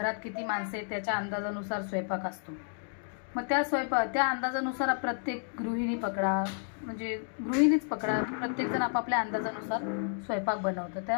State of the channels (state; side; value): silent; right; 57 dB below the other